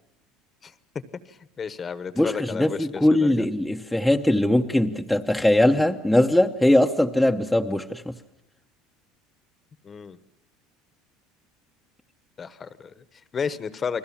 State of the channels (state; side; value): normal; both; correlation 0.95